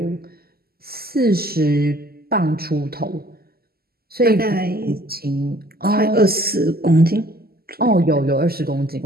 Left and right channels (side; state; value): left; late; 0.45 ms